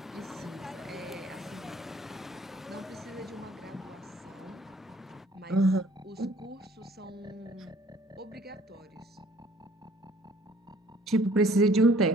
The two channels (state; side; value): normal; both; correlation 0.57